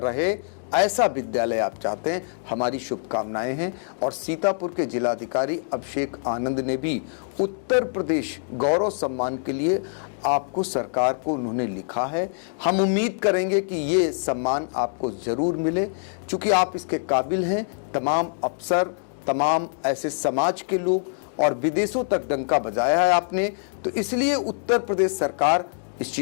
ऐसा विद्यालय आप चाहते हैं, हमारी शुभकामनाएं हैं। और सीतापुर के जिलाधिकारी अभिषेक आनंद ने भी उत्तर प्रदेश गौरव सम्मान के लिए आपको, सरकार को उन्होंने लिखा है। हम उम्मीद करेंगे कि ये सम्मान आपको ज़रूर मिले, क्योंकि आप इसके काबिल हैं। तमाम अफसर, तमाम ऐसे समाज के लोग और विदेशों तक डंका बजाया है आपने, तो इसलिए उत्तर प्रदेश सरकार इस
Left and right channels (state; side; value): silent; right; digital silence